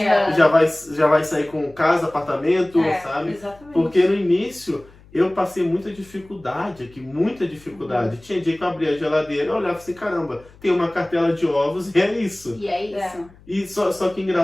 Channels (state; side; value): noise; left; hum, 25 dB below the sound